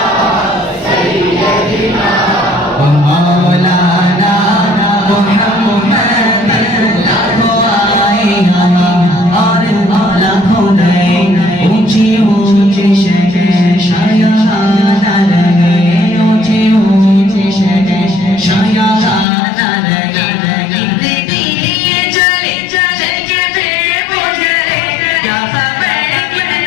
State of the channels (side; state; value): right; drops out; at 19.2 s